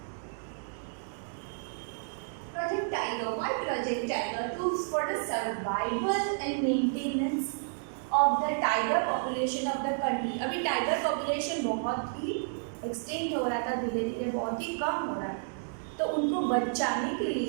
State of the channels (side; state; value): left; silent; digital silence